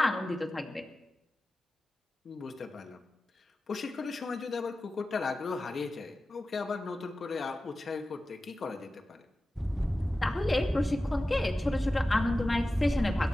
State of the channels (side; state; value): both; normal; correlation 0.95